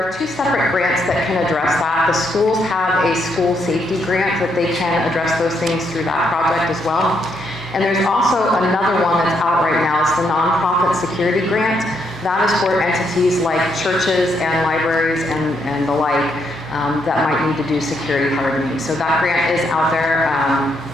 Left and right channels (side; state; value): both; normal; correlation 0.76